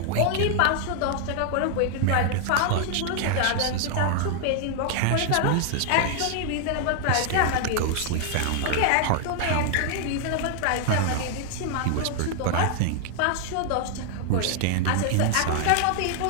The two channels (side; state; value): both; different; correlation 0.00